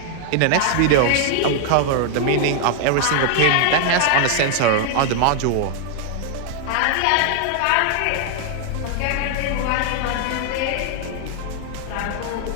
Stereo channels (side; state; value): both; different; correlation 0.00